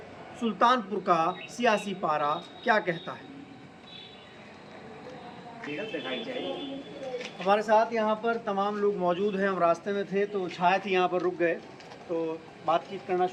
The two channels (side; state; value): both; identical; correlation 1.00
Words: सुल्तानपुर का सियासी पारा क्या कहता है। हमारे साथ यहाँ पर तमाम लोग मौजूद हैं। हम रास्ते में थे तो छाया थी, यहाँ पर रुक गए तो बातचीत करना